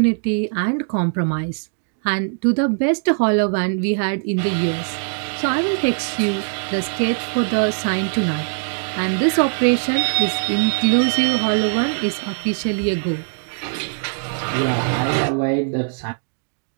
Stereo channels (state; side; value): silent; left; digital silence